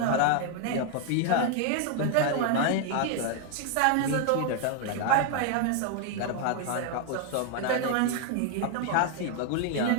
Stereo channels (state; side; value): different; both; correlation 0.00